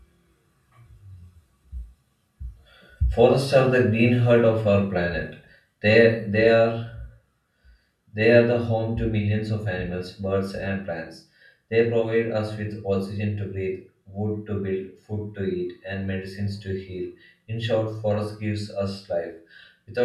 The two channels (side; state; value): both; identical; correlation 1.00